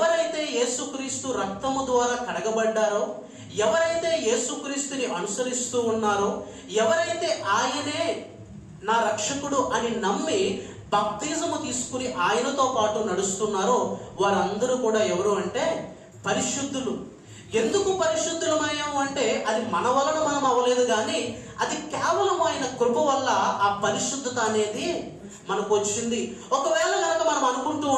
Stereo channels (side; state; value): both; identical; correlation 1.00